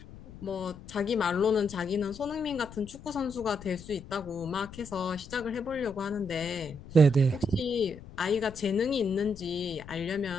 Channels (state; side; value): noise; left; rumble, 16 dB below the sound